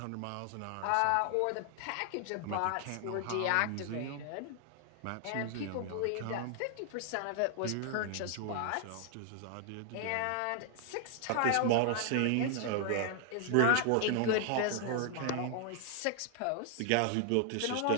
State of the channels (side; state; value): both; different; correlation 0.00